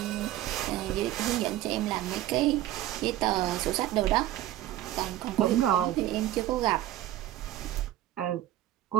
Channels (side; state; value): left; quieter; 14.2 dB